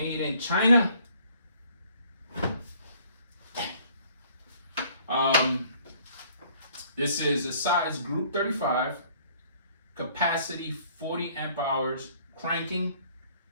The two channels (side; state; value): both; inverted; correlation -0.59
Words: in China. This is a size group 35, capacity 40 amp hours, cranking